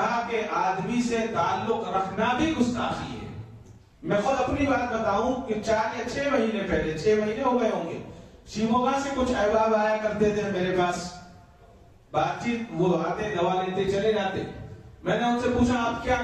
کے آدمی سے تعلق رکھنا بھی گستاخی ہے. میں خود اپنی بات بتاؤں کہ 4 یا 6 مہینے پہلے، 6 مہینے ہو گئے ہوں گے، شیموگا سے کچھ احباب آیا کرتے تھے میرے پاس، بات چیت، وہ آتے دوا لیتے چلے جاتے. میں نے ان سے پوچھا آپ کیا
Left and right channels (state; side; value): identical; both; correlation 1.00